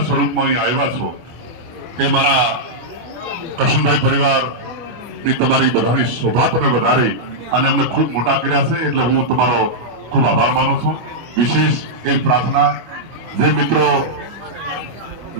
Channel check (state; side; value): late; left; 24 ms